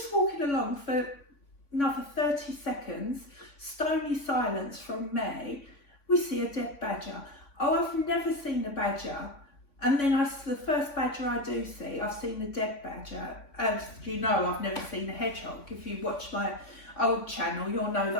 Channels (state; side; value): late; right; 3.5 ms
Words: walking along for another 30 seconds, stony silence from me. We see a dead badger. Oh, I've never seen a badger. And then the first badger I do see, I've seen a dead badger. As you know, I've never seen a hedgehog. If you watch my old channel, you'll know